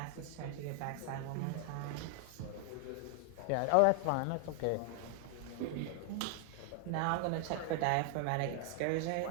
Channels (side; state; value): both; different; correlation 0.00